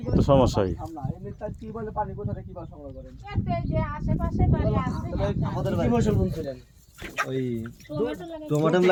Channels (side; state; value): both; identical; correlation 1.00